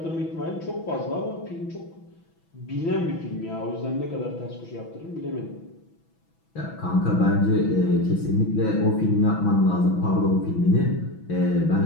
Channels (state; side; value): late; right; 6.1 ms